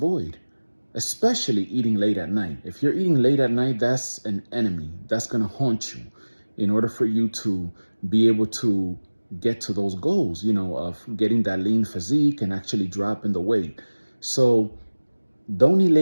especially eating late at night. If you're eating late at night, that's an enemy. That's going to haunt you in order for you to be able to get to those goals, you know, of getting that lean physique and actually dropping the weight. So don't eat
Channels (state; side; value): inverted; both; correlation -1.00